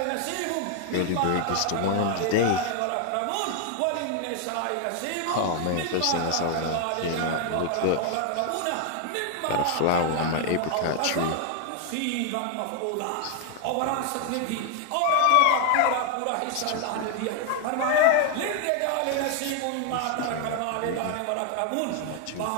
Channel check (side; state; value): both; different; correlation 0.00